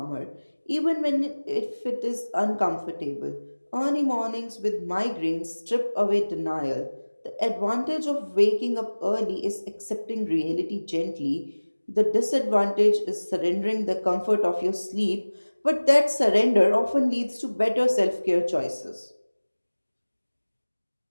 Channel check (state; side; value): inverted; both; correlation -1.00